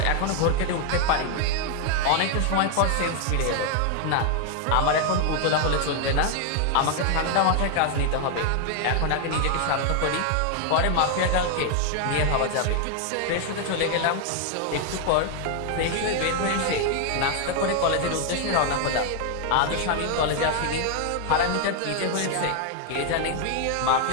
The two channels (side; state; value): both; different; correlation 0.00